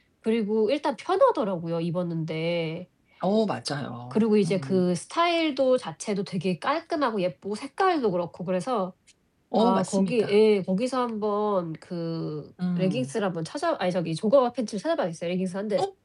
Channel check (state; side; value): identical; both; correlation 1.00